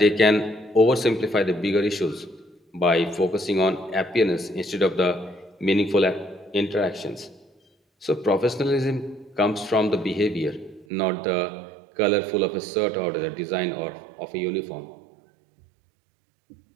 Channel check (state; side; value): drops out; left; at 10.9 s